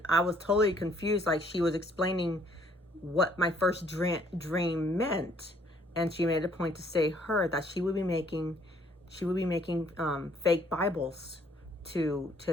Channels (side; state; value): both; normal; correlation 0.63